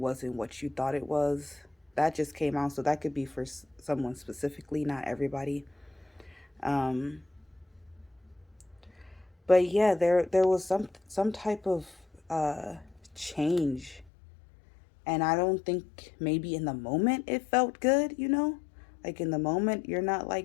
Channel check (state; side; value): drops out; right; at 14.1 s